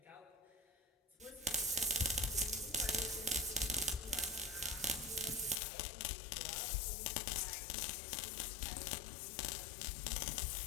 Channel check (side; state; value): right; drops out; at 5.6 s